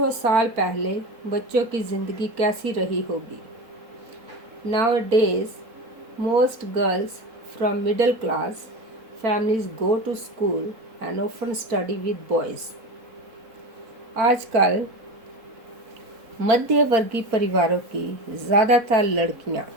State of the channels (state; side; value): late; left; 4.4 ms